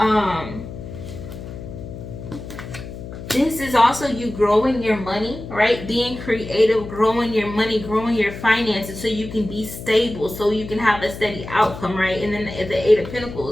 This is also you growing your money, right? Being creative, growing your money, growing your finances, so you can be stable, so you can have a steady outcome, right? And then the Eight of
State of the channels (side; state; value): left; noise; hum, 11 dB below the sound